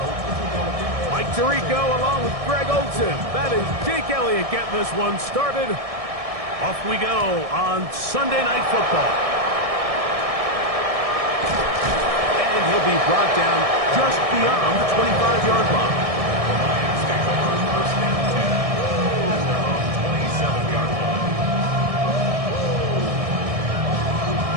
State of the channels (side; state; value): left; late; 1.6 ms